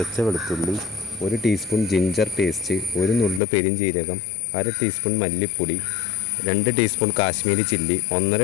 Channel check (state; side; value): drops out; right; at 3.4 s